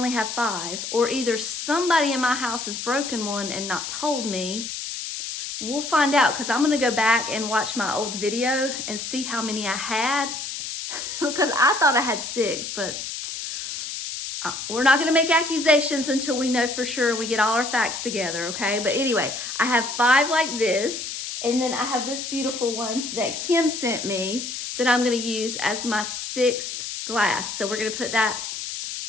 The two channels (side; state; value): left; noise; hiss, 6 dB below the sound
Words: have 5, or either somebody in my house has broken one and not told me. We'll find out, because I'm gonna go back and watch my old video and see how many I had, because I thought I had 6, but we're not gonna make accusations until we know for sure, we get all our facts together, okay? But anyway, I have 5 like this, and then I have this beautiful one that Kim sent me that I'm gonna use as my 6th glass. So we're gonna put that